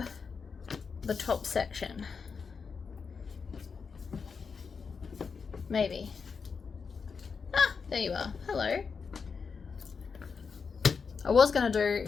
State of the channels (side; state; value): right; quieter; 5.5 dB